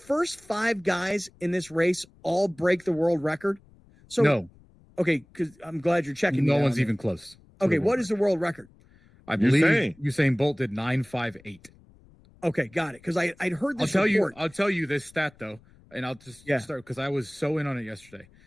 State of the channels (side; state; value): left; noise; rumble, 27 dB below the sound